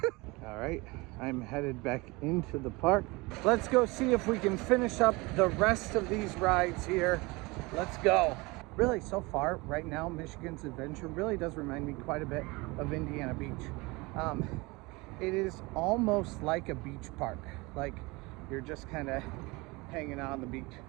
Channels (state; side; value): quieter; left; 24.4 dB